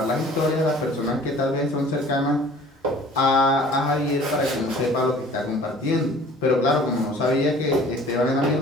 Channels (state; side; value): normal; both; correlation 0.49